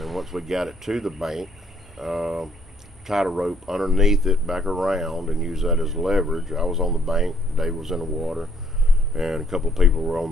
once we got it to the bank, tied a rope underneath it back around and used that as leverage. I was on the bank, Dave was in the water, and a couple of people were on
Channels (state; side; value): normal; both; correlation 0.66